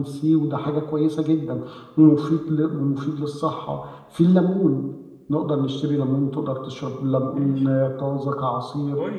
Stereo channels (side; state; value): both; identical; correlation 1.00